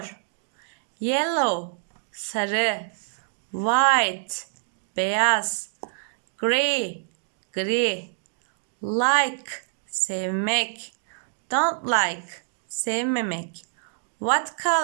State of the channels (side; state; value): left; silent; digital silence